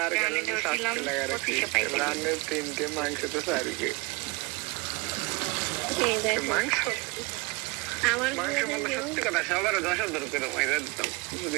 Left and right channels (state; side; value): quieter; left; 25.8 dB